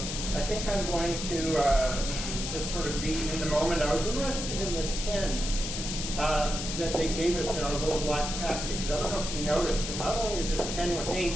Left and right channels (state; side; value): noise; left; hiss, 5 dB below the sound